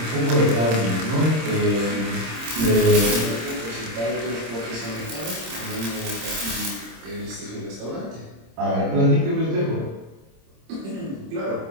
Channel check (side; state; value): left; late; 26 ms